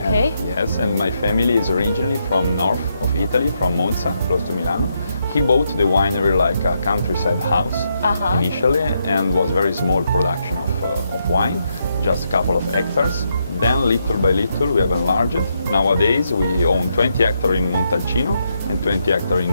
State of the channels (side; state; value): both; inverted; correlation -0.79